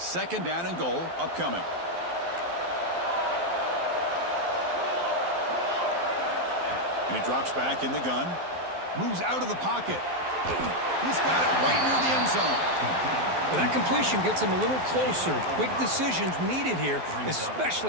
down and goal upcoming. And he drops back in the gun. Moves out of the pocket. He's got it right near the end zone. Well, that completion gets him a little closer. Quick decisions needed here,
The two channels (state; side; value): late; left; 12 ms